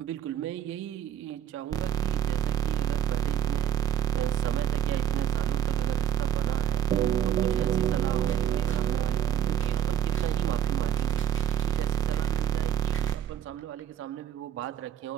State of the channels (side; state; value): left; quieter; 10.0 dB